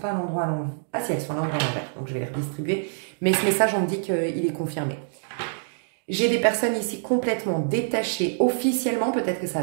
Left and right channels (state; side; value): silent; left; digital silence